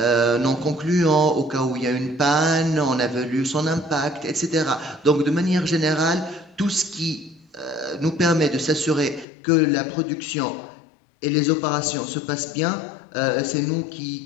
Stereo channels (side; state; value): right; drops out; at 9.2 s